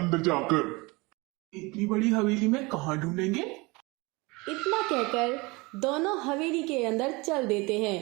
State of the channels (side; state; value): left; quieter; 25.1 dB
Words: जाकर। इतनी बड़ी हवेली में कहाँ ढूंढेंगे? इतना कहकर दोनों हवेली के अंदर चल देते